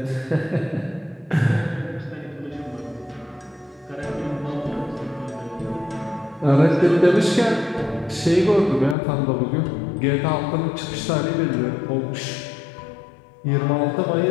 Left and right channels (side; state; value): right; drops out; at 9.0 s